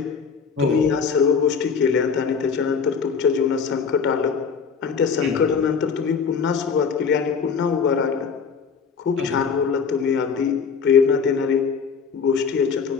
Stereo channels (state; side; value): quieter; right; 6.0 dB